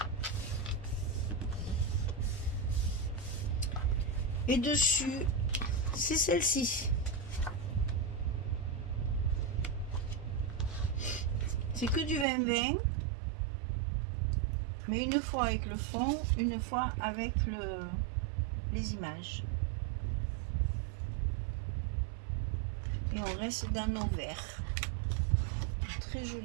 Et dessus, c'est celle-ci. C'est que du 20-20. Mais une fois avec le fond, une fois avec les images. Et on reste dans nos verts. Un très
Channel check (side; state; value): left; drops out; at 12.2 s